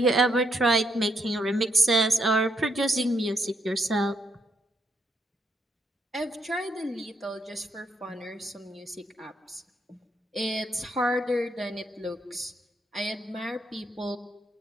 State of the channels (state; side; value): normal; both; correlation 0.76